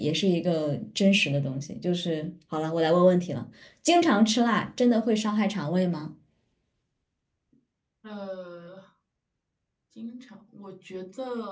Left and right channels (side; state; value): both; identical; correlation 1.00